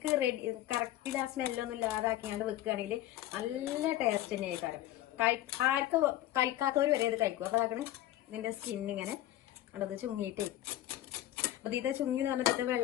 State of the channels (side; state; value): right; quieter; 14.1 dB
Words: കറക്റ്റിൽ ആ സ്മെല്ലൊന്നും ഇല്ലാതാക്കിയാണ്ട് വെക്കുകയാണെങ്കിൽ നല്ല ടേസ്റ്റ് തന്നെ ആയിക്കാരം. ആർക്കും കഴിക്കാത്തവർ വരെ ഇത് കഴിക്കും. അപ്പൊ അതാണ് ഇതിന്റെ സ്കിന്നിങ്ങനെ അത് ചുങ്ങിയിട്ട്, അത് ഇത് ചുങ്ങി വന്നിട്ട്